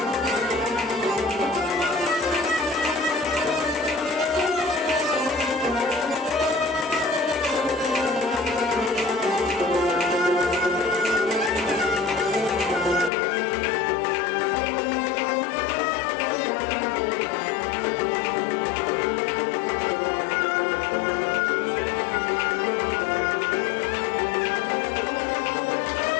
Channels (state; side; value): drops out; right; at 13.1 s